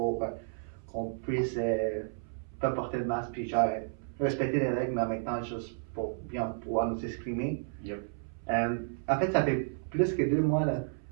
qu'on puisse pas porter le masque, puis genre respecter les règles, mais en même temps, juste pour bien pouvoir nous exprimer. Yep. En fait, ça fait plus que 2 mois là,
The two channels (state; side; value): silent; left; 56 dB below the other